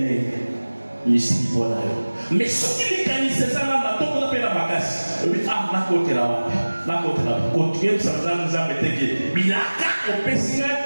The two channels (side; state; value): both; inverted; correlation -1.00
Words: Ici, voilà. Mais ce qui est canné, c'est ça, là, on a fait la bagasse. Ah, la côte là, la côte là. Continuez, ça nous a été que. Bilaka, au Pessinga,